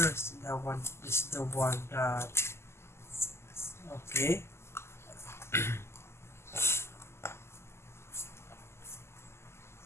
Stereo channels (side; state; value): right; late; 0.12 ms